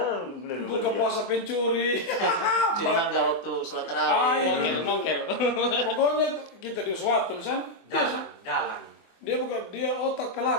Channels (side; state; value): right; late; 24 ms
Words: buka puasa pencuri. Curi mangga waktu sholat tarawih. Mokel. Pokoknya kita di suatu misalnya. Dalang. Dia otak